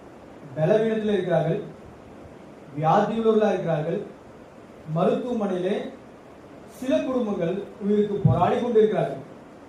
பலவீனத்தில் இருக்கிறார்கள், வியாதியுள்ளவர்களாக இருக்கிறார்கள். மருத்துவமனையிலே சில குடும்பங்கள் உயிருக்கு போராடி கொண்டிருக்கிறார்கள்.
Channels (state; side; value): identical; both; correlation 1.00